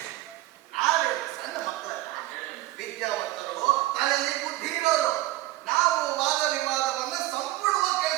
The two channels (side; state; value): left; quieter; 17.1 dB